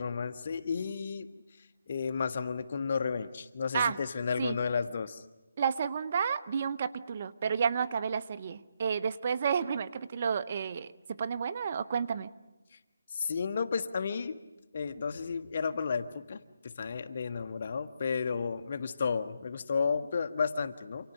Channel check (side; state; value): both; inverted; correlation -0.78